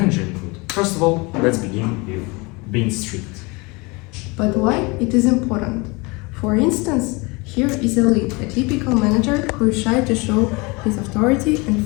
include? First of all, let's begin with being strict. But why it is important? For instance, here is a lead, a typical manager who is shy to show his authority and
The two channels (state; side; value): quieter; right; 26.7 dB